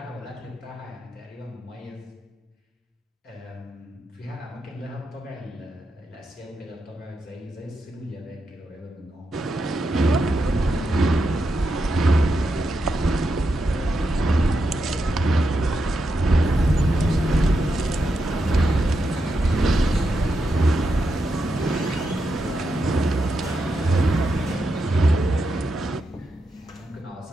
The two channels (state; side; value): normal; both; correlation 0.85